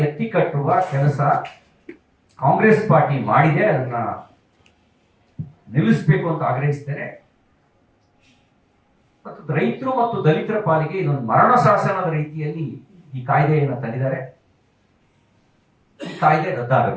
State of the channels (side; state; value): both; identical; correlation 1.00